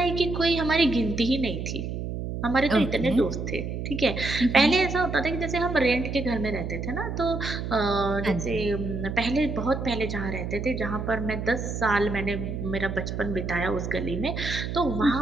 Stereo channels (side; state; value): right; noise; hum, 5 dB below the sound